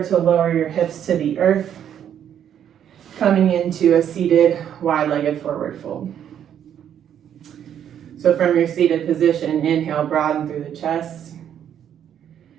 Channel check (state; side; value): quieter; left; 9.5 dB